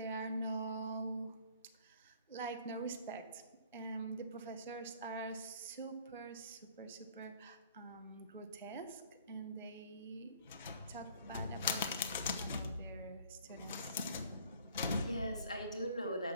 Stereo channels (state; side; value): inverted; both; correlation -0.55